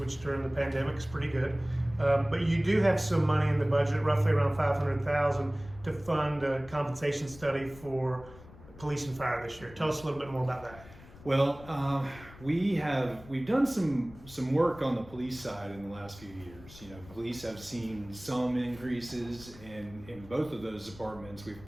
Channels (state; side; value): noise; left; rumble, 19 dB below the sound